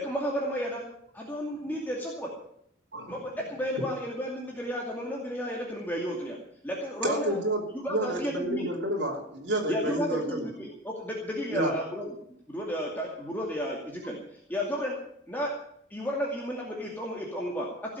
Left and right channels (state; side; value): normal; both; correlation 0.34